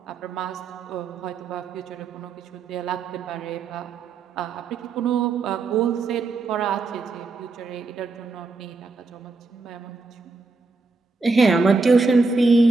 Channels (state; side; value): quieter; left; 3.8 dB